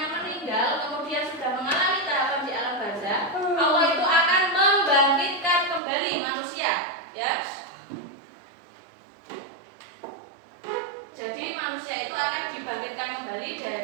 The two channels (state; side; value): drops out; left; at 5.8 s